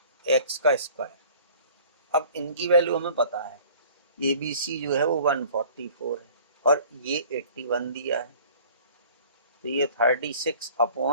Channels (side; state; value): both; inverted; correlation -0.50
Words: एक्स का स्क्वायर। अब इनकी वैल्यू हमें पता है, ए बी सी जो है वो 144 है और ये 81 दिया है, तो ये 36